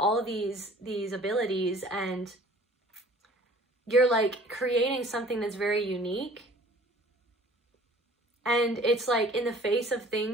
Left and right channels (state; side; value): normal; both; correlation 0.50